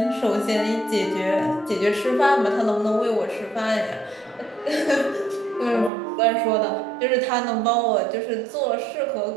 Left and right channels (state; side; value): drops out; left; at 5.9 s